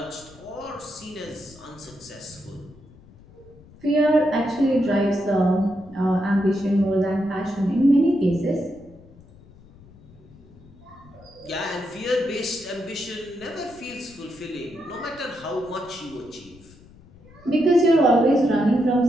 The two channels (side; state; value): left; noise; rumble, 24 dB below the sound